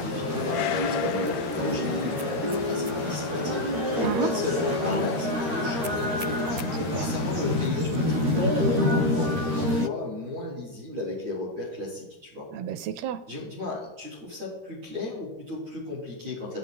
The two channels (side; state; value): left; late; 13 ms